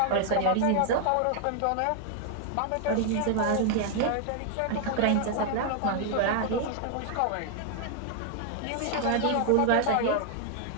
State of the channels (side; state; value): both; different; correlation 0.00